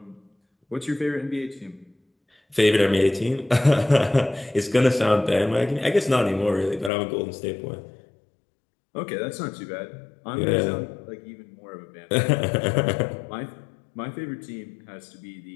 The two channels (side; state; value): right; drops out; at 6.9 s